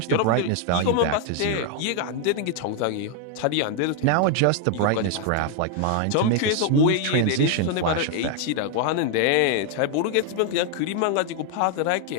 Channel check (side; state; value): both; different; correlation 0.01